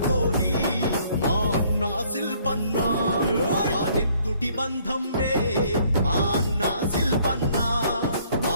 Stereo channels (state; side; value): inverted; both; correlation -0.62